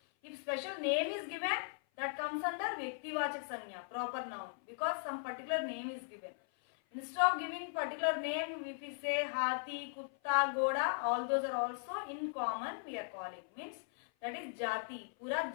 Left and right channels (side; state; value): right; silent; 52 dB below the other